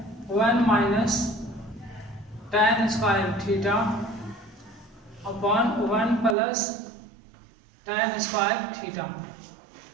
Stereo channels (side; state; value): left; drops out; at 6.4 s